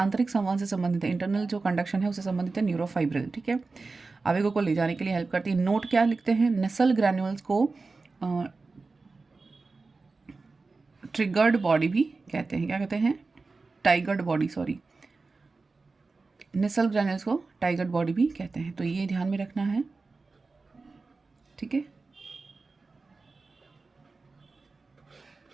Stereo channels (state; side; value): quieter; left; 3.9 dB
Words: संवहन से संबंधित है, इंटरनल जो कंडक्शन है उससे संबंधित है न्यूरोफाइब्रिल। ठीक है। आवेगों को ले जाने के लिए हेल्प करती है। नोट क्या लिखते हैं? नेसल ग्रैन्यूल्स को ट्रिगर्ड बॉडी भी कहते हैं। क्या कहते हैं? टाइगर्ड बॉडी, सॉरी, नेसल ग्रैन्यूल्स को टाइगर्ड बॉडी भी कहते हैं। तो ये ध्यान में रखना है। ठीक है।